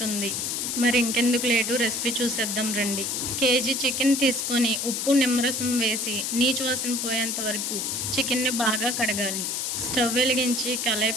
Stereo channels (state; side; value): noise; left; hiss, 1 dB below the sound